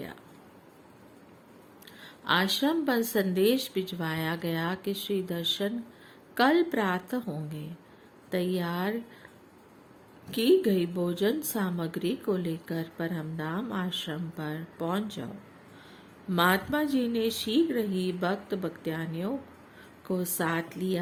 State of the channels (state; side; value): identical; both; correlation 1.00